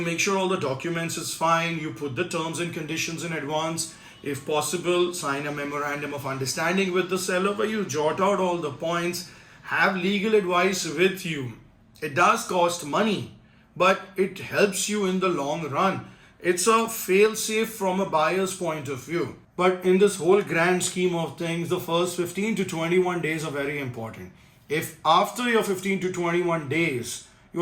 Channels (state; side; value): identical; both; correlation 1.00